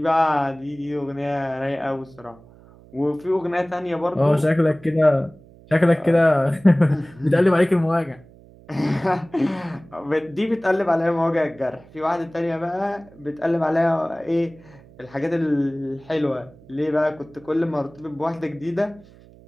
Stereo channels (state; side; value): noise; right; hum, 24 dB below the sound